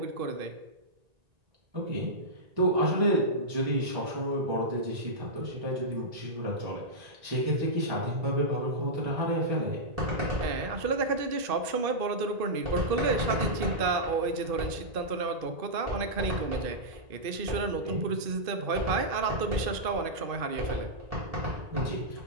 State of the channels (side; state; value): left; late; 1.8 ms